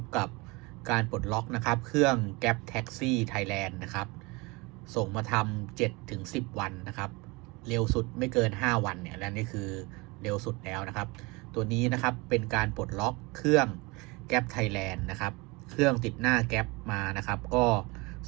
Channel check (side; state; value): left; quieter; 25.6 dB